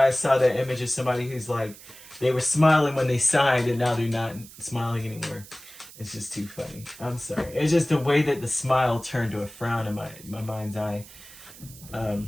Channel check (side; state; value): right; noise; hiss, 18 dB below the sound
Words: I saw that image of somebody who's like, they were smiling when they signed and now they're not smiling anymore. It's just too funny. I'm sorry. It's just the way that the smile turned to a frown in my mind's eye.